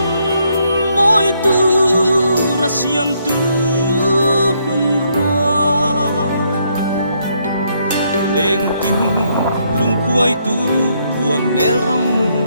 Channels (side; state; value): both; inverted; correlation -0.73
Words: môi tu ra siam tu mun roa lên tin lung quay tu buồn nel ram